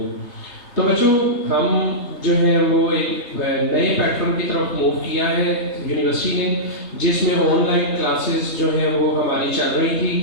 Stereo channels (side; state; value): right; late; 3.3 ms